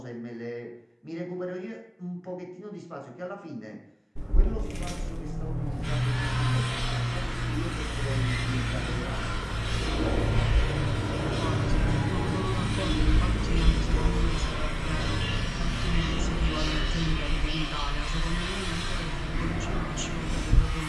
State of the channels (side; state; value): both; identical; correlation 1.00